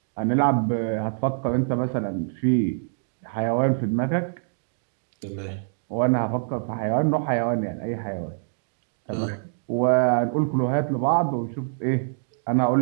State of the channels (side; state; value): left; silent; digital silence